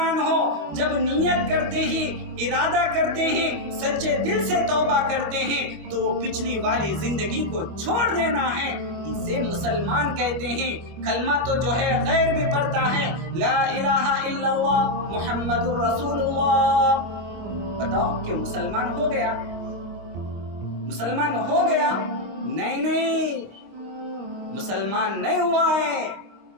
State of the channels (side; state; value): left; late; 25 ms